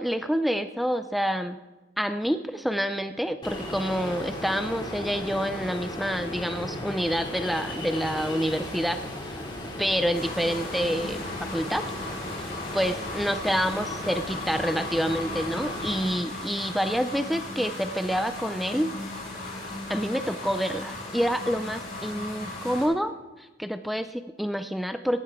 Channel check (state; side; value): normal; both; correlation 0.84